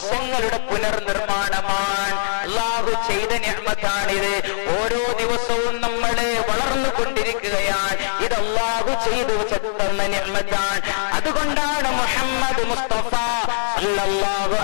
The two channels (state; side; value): silent; right; digital silence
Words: പുനർനിർമ്മാണമാണ്. അല്ലാഹു ചെയ്ത നിഅമത്താണിത്. ഓരോ ദിവസവും നമ്മളെ വളർന്നുകൊണ്ടിരിക്കുകയാണ്. ഇത് അല്ലാഹു ചെയ്തു തന്ന നിഅമത്താണ്. അതുകൊണ്ടാണ് മുഹമ്മദ് മുസ്തഫ സല്ലല്ലാഹു